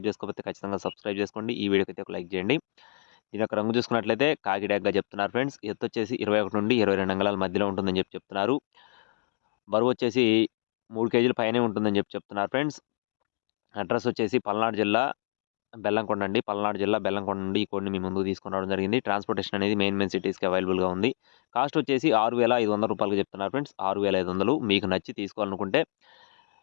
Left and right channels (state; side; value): silent; right; digital silence